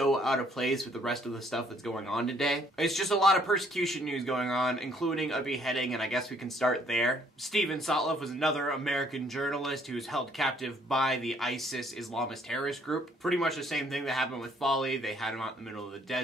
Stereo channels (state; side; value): normal; both; correlation 0.64